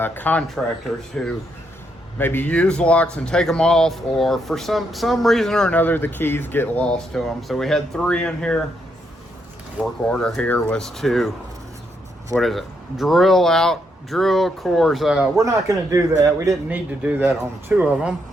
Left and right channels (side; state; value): both; normal; correlation 0.77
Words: contractors who maybe use locks and take them off, or for some reason or another the keys get lost to them. So we had 3 in here. Work order here was to, drill cores. We're not going to do that. We didn't need to do that on 2 of them.